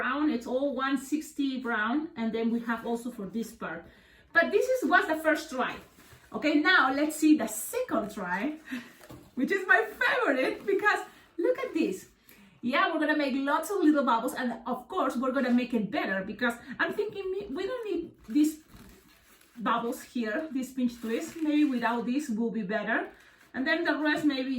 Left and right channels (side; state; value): both; identical; correlation 1.00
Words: it's all 160 brown, and then we have also for this part. But this was the first try. Okay, now let's see the second try, which is my favorite, because look at this. Yeah, we're gonna make lots of little bubbles, and of course we're gonna make it better, because I'm thinking we don't need these bubbles here, this pinch twist. Maybe without this will be better, and then the rest, maybe